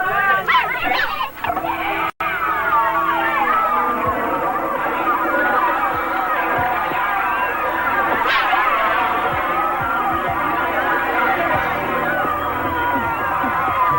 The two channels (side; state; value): both; identical; correlation 1.00